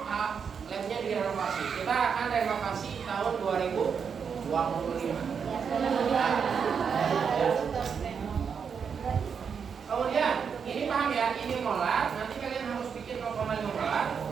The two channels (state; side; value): quieter; left; 6.6 dB